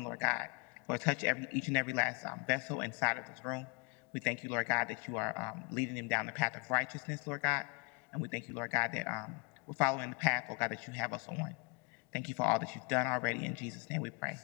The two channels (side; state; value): right; quieter; 33.1 dB